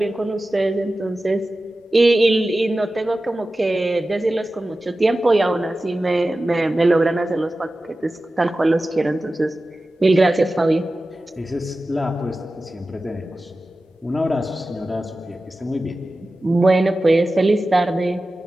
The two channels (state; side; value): normal; both; correlation 0.95